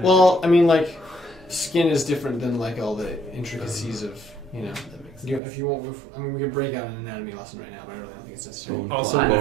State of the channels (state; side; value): drops out; left; at 5.4 s